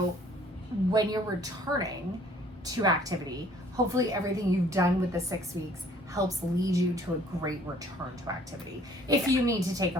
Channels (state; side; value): normal; both; correlation 0.57